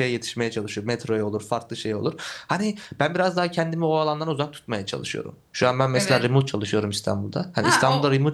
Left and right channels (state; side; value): identical; both; correlation 1.00